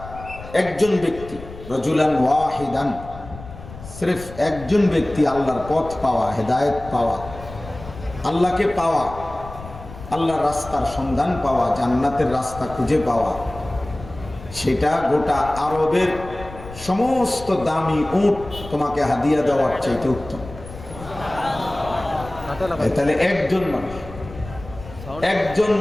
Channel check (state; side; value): noise; left; rumble, 15 dB below the sound